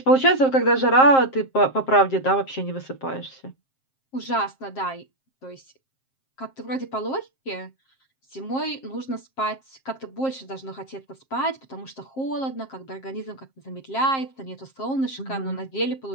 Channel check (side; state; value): right; late; 7.5 ms